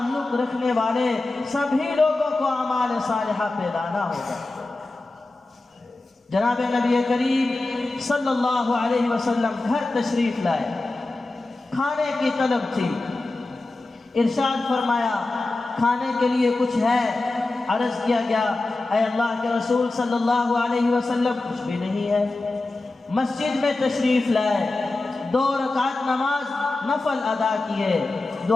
رکھنے والے سبھی لوگوں کو اعمال صالحہ پہ لانا ہوگا۔ جناب نبی کریم صلی اللہ علیہ وسلم گھر تشریف لائے، کھانے کی طلب تھی، ارشاد فرمایا کھانے کے لیے کچھ ہے؟ عرض کیا گیا اے اللہ کے رسول صلی اللہ علیہ وسلم کچھ بھی نہیں ہے۔ مسجد میں تشریف لائے، 2 رکعت نماز نفل ادا کیے،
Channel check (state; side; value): quieter; right; 3.1 dB